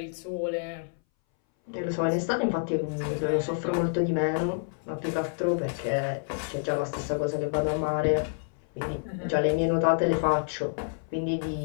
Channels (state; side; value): silent; right; 59 dB below the other